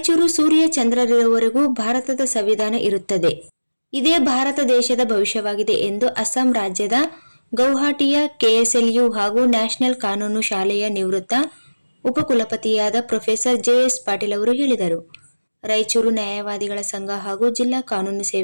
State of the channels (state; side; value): inverted; both; correlation -1.00